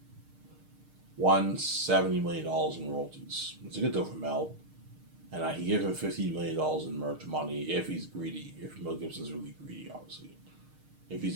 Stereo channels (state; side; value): late; left; 6.5 ms